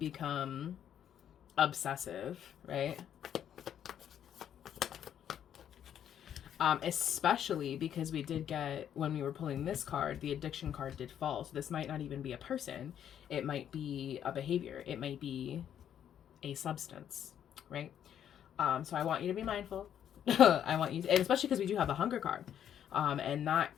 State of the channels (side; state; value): right; quieter; 9.6 dB